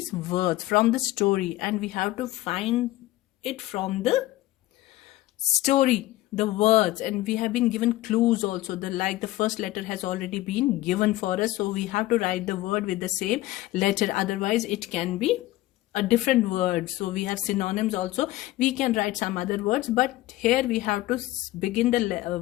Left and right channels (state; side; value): quieter; right; 16.6 dB